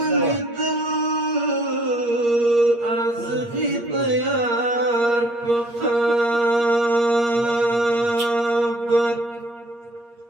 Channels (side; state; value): left; late; 8.5 ms